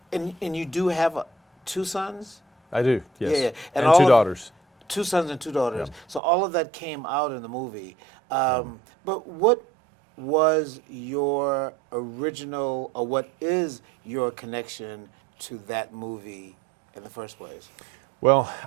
and you do have 2 sons? I do, yes. Yeah. And 2 daughters. 2 sons and 2 daughters. Yeah. So all of that came out in the movie. But what was your original, or what is your connection to that movie in the first place? Well,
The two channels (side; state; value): left; drops out; at 6.2 s